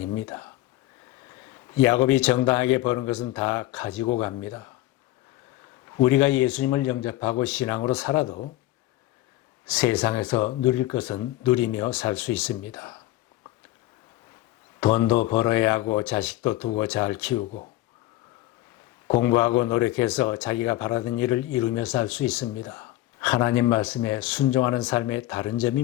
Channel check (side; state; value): right; quieter; 16.2 dB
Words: 야곱이 정당하게 버는 것은 다 가지고 갑니다. 우리가 예수님을 영접하고 신앙으로 살아도 세상에서 누릴 것은 누리며 살 수 있습니다. 돈도 벌어야 하고 자식도 두고 잘 키우고 공부하고 노력해서 자기가 바라던 일을 이루며 살 수 있습니다. 하나님 말씀에 순종하는 삶의 다른 점이